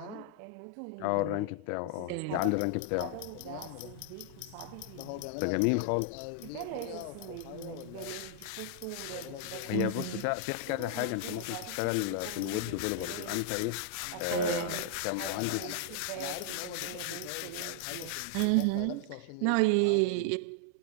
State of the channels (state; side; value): different; both; correlation 0.00